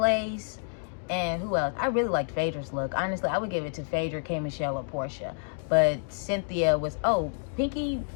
And who else? I really liked Phaedra's look. Honestly, I would give it to Phaedra, K. Michelle, or Portia. But Cynthia was, Pinky,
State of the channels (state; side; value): silent; right; digital silence